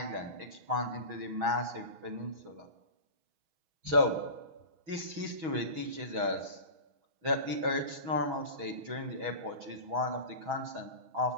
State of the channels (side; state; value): left; late; 6.2 ms